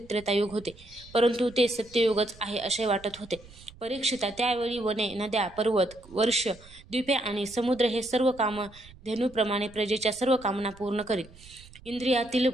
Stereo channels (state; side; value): noise; right; rumble, 22 dB below the sound